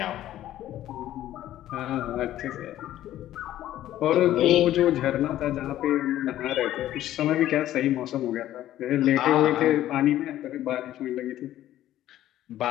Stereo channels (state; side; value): quieter; right; 13.2 dB